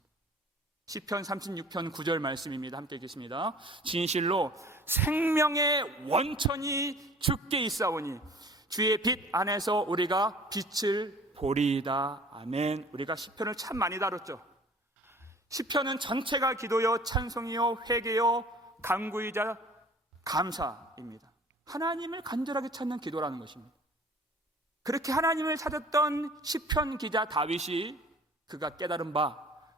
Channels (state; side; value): normal; both; correlation 0.49